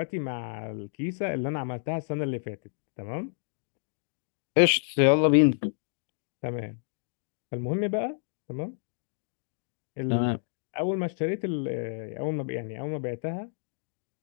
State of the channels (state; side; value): silent; right; digital silence